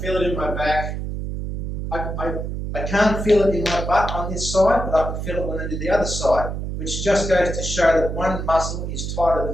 it in my back. I can't feel it in my butt on this side, but I can feel it when I do the other side, which just goes to show that one muscle is tighter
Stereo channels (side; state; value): right; noise; hum, 4 dB below the sound